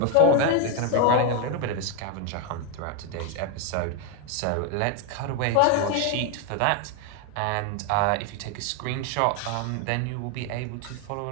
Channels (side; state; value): both; different; correlation 0.01